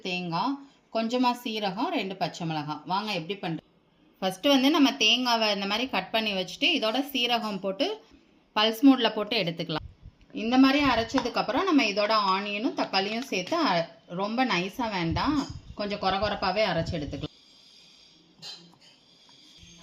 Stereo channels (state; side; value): identical; both; correlation 1.00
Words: தேங்காய், கொஞ்சமாக சீரகம், 2 பச்சை மிளகாய். வாங்க எப்படி பண்ணுறேன். ஃபஸ்ட்டு வந்து நம்ம தேங்காவை இந்த மாதிரி கட் பண்ணி வச்சுட்டு இதோட சீரகம் போட்டு பல்ஸ் மோடில் போட்டு எடுத்துக்கலாம். இந்த மாதிரி அரைச்சதுக்கப்புறம் நம்ம இதோட ஆனியனும் தக்காளியும் சேர்த்து ரொம்ப நைஸாக வேண்டாம், கொஞ்சம் கொரகொரப்பாகவே அரைச்சி எடுத்துக்கலாம்.